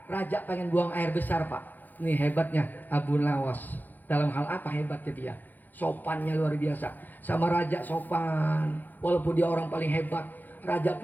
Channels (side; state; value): right; late; 0.085 ms